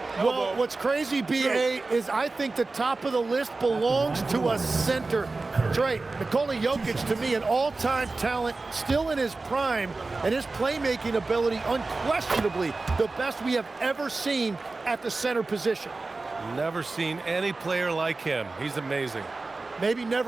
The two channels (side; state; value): left; quieter; 3.6 dB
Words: Well, what's crazy, B.A., is I think the top of the list belongs to a center. That's right. Nikola Jokic, to me, an all-time talent, still in his prime, and his playmaking ability, unquestionably, the best we have ever seen at the center position. Never seen any player like him. He's amazing. Maybe